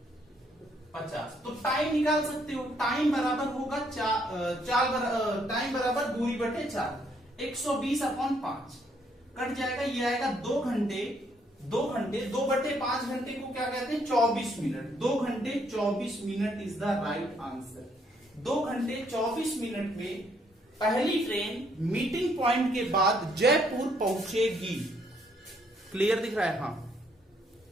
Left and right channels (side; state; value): both; normal; correlation 0.70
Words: तो टाइम निकाल सकते हो, टाइम बराबर होगा टाइम बराबर दूरी बटे 4, 120/5 कट जाएगा, ये आएगा 2 घंटे 2/5 घंटे को क्या कहते हैं 24 मिनट, 2 घंटे 24 minute is the right answer. 2 घंटे 24 मिनट में पहली ट्रेन मीटिंग पॉइंट के बाद जयपुर पहुंचेगी। क्लियर दिख रहा है? हाँ,